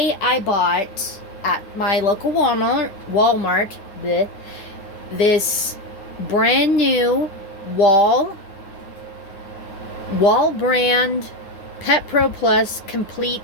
I bought at my local Walmart this brand new wall brand Pet Pro Plus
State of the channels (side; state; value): right; late; 10 ms